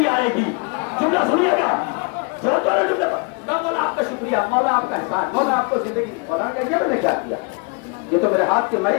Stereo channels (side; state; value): right; quieter; 32.5 dB